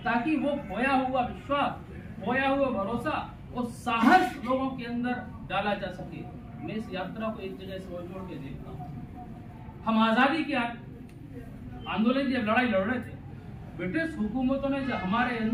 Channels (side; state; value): both; identical; correlation 1.00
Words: ताकि वो खोया हुआ विश्वास, खोया हुआ भरोसा और साहस लोगों के अंदर डाला जा सके। मैं इस यात्रा को एक जगह से जोड़ के देखता हूँ। हम आजादी के आंदोलन की जब लड़ाई लड़ रहे थे, ब्रिटिश हुकूमतों ने जब हमारे